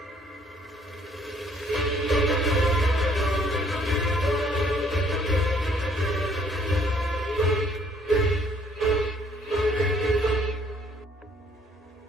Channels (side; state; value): both; normal; correlation 0.63